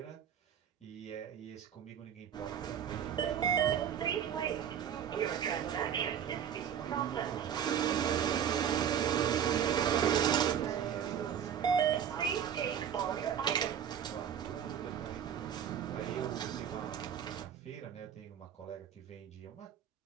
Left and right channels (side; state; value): left; quieter; 8.8 dB